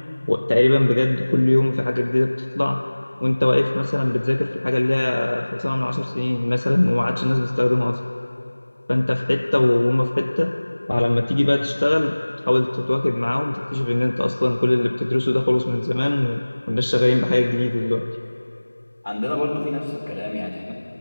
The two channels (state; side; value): inverted; both; correlation -1.00